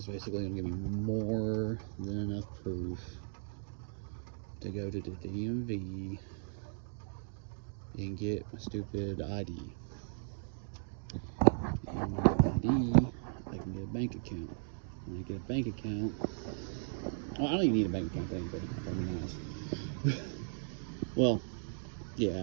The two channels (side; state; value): left; silent; digital silence